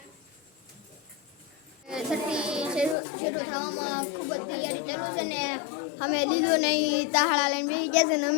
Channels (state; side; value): drops out; right; at 3.0 s